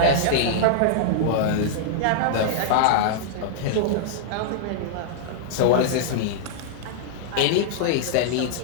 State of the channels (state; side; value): different; both; correlation -0.01